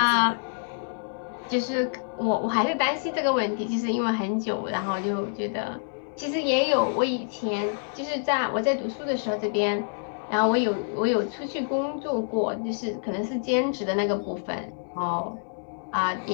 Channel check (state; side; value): silent; right; 60 dB below the other